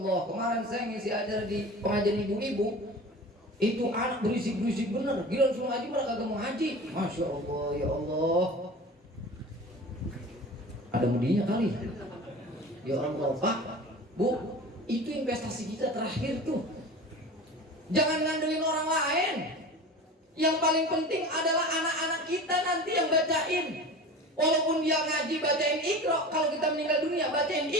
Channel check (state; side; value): normal; both; correlation 0.36